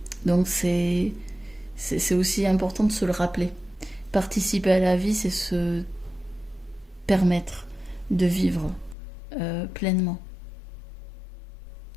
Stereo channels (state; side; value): drops out; right; at 9.0 s